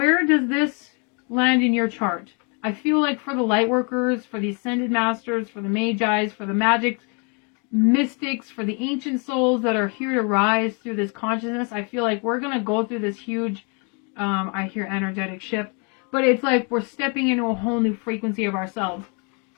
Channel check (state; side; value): quieter; right; 35.7 dB